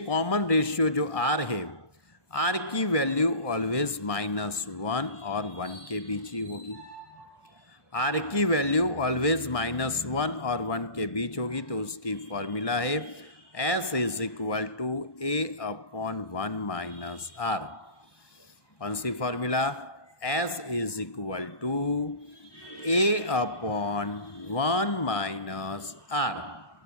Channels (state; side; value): late; right; 1.2 ms